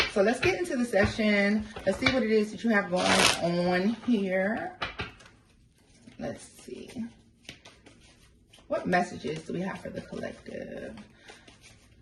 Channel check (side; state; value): both; identical; correlation 1.00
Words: So let's get into the session. Let's see what it is that you have going on here. Let's see. What messages do we have for the collective?